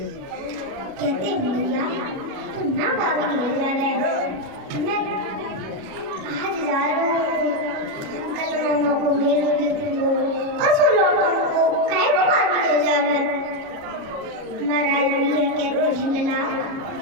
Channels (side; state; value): left; late; 37 ms